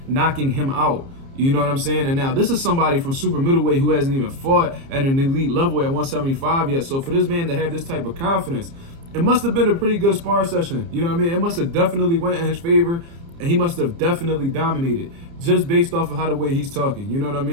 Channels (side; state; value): left; late; 30 ms